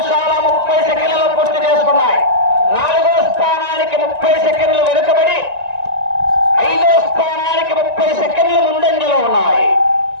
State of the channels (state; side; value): late; left; 1.9 ms